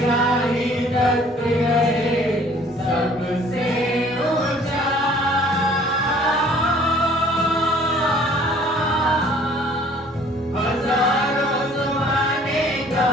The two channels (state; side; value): normal; both; correlation 0.55